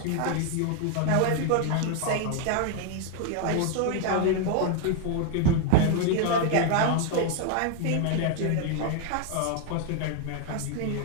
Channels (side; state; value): both; different; correlation 0.00